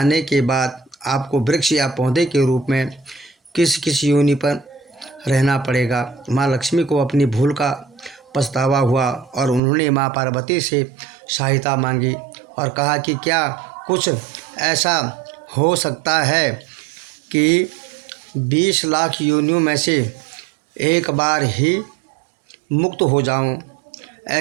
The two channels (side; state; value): left; drops out; at 9.6 s